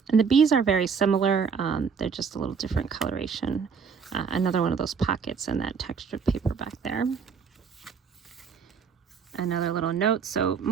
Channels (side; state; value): left; quieter; 6.1 dB